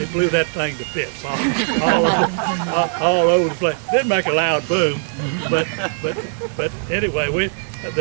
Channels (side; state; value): left; silent; digital silence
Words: blew that thing to bits all over the place. Didn't make a loud boom, but anyway,